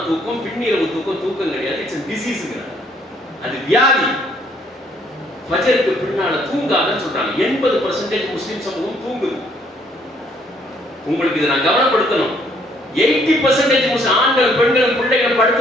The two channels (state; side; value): normal; both; correlation 0.65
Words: தூக்கம், பின்னிரவு தூக்கம் கிடையாது. It's a disease. அது வியாதி. ஃபஜருக்கு பின்னால தூங்காதன்னு சொல்றாங்க. 80% முஸ்லிம் சமூகம் தூங்குது. உங்களுக்கு இதை நான் கவனப்படுத்தணும். 80% முஸ்லிம் ஆண்கள், பெண்கள், பிள்ளைகள்